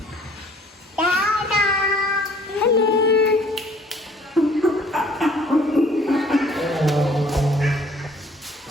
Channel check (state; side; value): normal; both; correlation 0.56